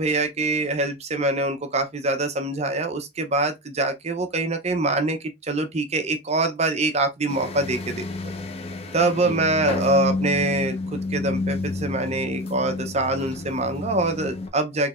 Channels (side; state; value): both; normal; correlation 0.21